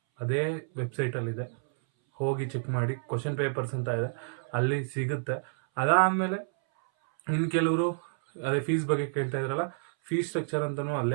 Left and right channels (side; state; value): left; silent; 58 dB below the other